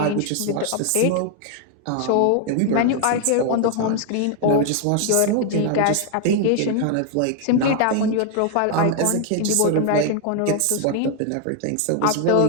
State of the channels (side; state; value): both; different; correlation 0.00